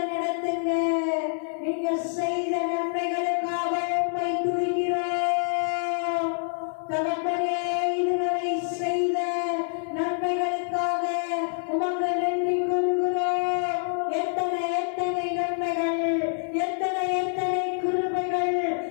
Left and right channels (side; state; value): right; silent; 61 dB below the other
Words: நடத்துங்க. நீங்க செய்த நன்மைகளுக்காக உம்மை துதிக்கிறோம். தகப்பனே இதுவரை செய்த நன்மைகளுக்காக உமக்கு நன்றி கூறுகிறோம். எத்தனை எத்தனை நன்மைகள், எத்தனை எத்தனை கிருபைகள்,